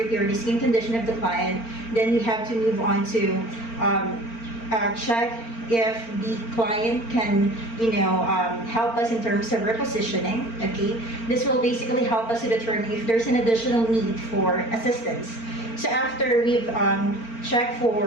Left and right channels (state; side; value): late; right; 4.4 ms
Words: or the skin condition of the client, then we have to move on to check if the client can, help us in terms of repositioning. Okay, this will basically help us to determine if there's an additional need for assistance. So after we've checked